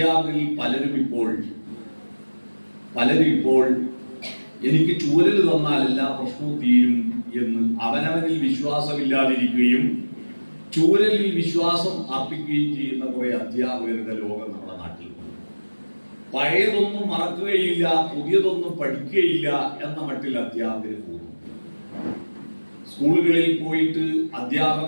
പലരും ഇപ്പോൾ എനിക്ക് ചൂരൽ തന്നാൽ എല്ലാ പ്രശ്നവും തീരും എന്ന് അവനവനിൽ വിശ്വാസമില്ലാതിരിക്കുകയും ചൂരലിൽ വിശ്വാസം അർപ്പിക്കുകയും ചെയ്യുന്ന കുറെ അധ്യാപകരുടെ ലോകം നമ്മുടെ നാട്ടിൽ. പഴയതൊന്നും മറക്കുകയില്ല, പുതിയതൊന്നും പഠിക്കുകയില്ല എന്ന മട്ടിൽ അധ്യാപകർ പോകുന്നു. സ്കൂളുകളിൽ പോയിട്ട്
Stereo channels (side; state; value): both; inverted; correlation -1.00